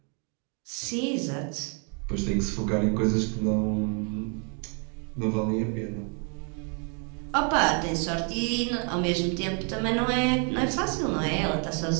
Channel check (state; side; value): quieter; left; 37.8 dB